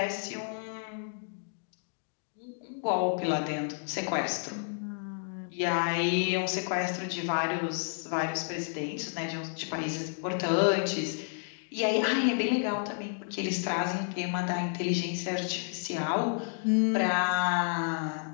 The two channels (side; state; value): right; silent; 57 dB below the other